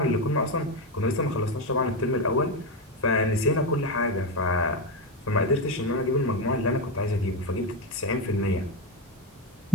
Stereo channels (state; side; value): normal; both; correlation 0.13